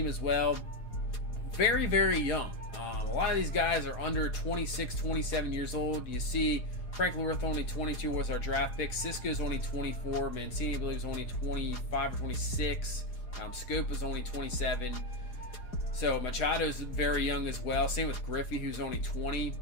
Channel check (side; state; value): right; late; 4.8 ms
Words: as well, very, very young. A lot of these guys are under 26, 27 years old. You see Franklin Wirth only 22 was our draft pick. Cisco's only 24. Mancini, I believe, is only 25 or 26. Schoop was only 27. So Machado's very young as well. Same with Griffey, who's only 20.